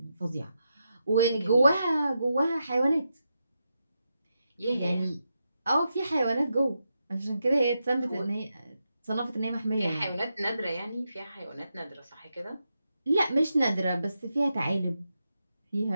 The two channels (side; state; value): both; inverted; correlation -0.86